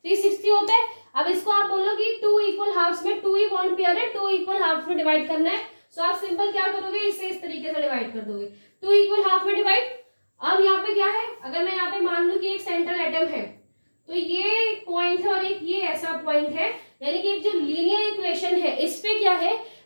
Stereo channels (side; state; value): both; inverted; correlation -1.00